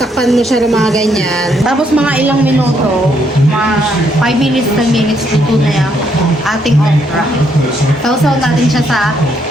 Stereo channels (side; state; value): both; normal; correlation 0.73